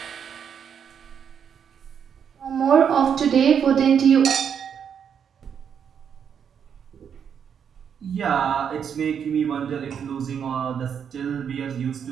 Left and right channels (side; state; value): left; quieter; 7.7 dB